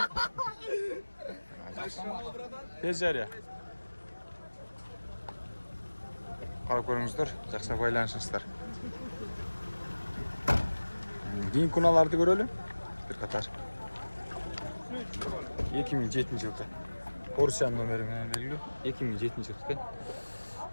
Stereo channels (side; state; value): both; inverted; correlation -1.00